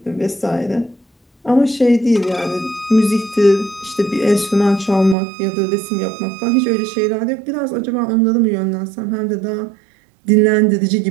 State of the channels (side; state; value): left; drops out; at 5.2 s